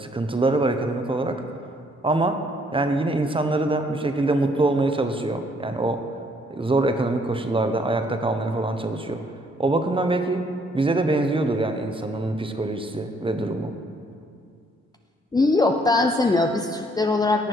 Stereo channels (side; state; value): both; normal; correlation 0.66